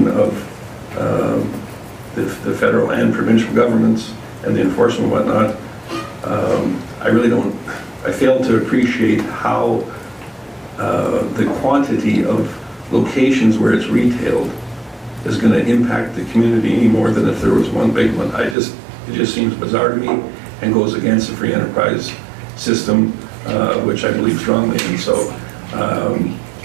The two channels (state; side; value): drops out; left; at 18.6 s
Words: of the federal and provincial governments and the enforcement and whatnot. I fail to appreciate how the quantity of locations where it's retailed is going to impact the community any more than if there was one big one. It just seems bizarre to me and goes against the free enterprise system, which I believe strongly in. So